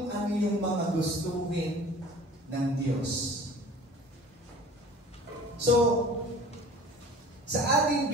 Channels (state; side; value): normal; both; correlation 0.44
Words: ano yung mga gustuhin ng Diyos. So, sa ating